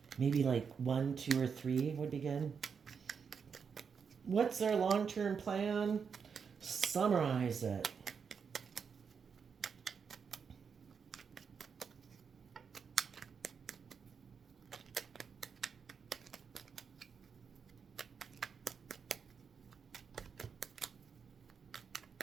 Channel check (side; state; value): left; quieter; 6.3 dB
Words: Maybe like 1, 2, or 3 would be good. What's their long-term plan? Summarize it.